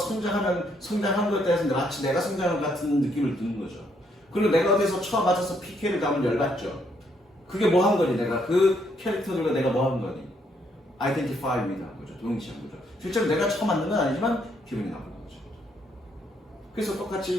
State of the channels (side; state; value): both; normal; correlation 0.72